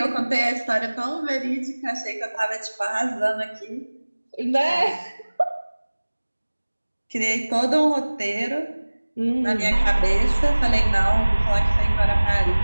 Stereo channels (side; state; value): both; inverted; correlation -1.00